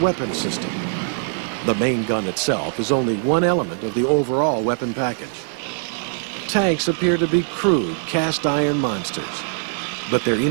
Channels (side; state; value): left; silent; digital silence